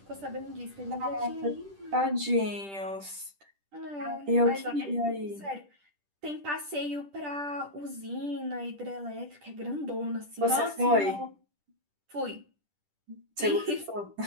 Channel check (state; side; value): late; left; 10 ms